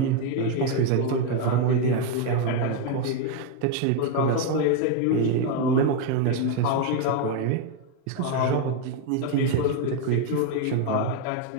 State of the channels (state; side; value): different; both; correlation 0.01